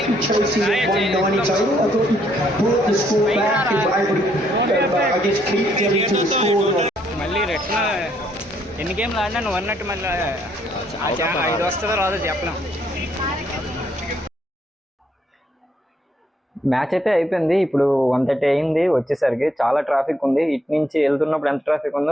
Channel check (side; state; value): both; normal; correlation 0.70